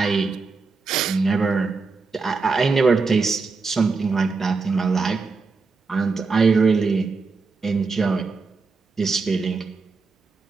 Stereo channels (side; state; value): left; quieter; 4.4 dB